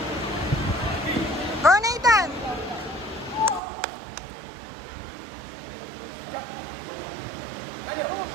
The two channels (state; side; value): drops out; left; at 3.6 s